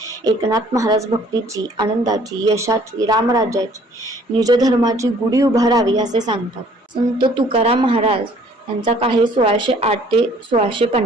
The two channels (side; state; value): both; normal; correlation 0.57